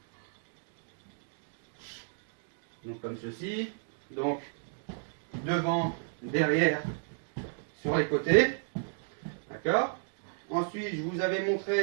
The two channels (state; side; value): silent; left; digital silence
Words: Donc comme ceci. Donc devant, derrière, sur les côtés. D'accord? Ensuite, je vous avais